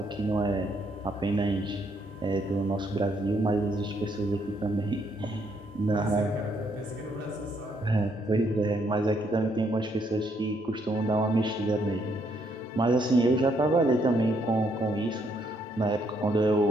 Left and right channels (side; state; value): both; normal; correlation 0.72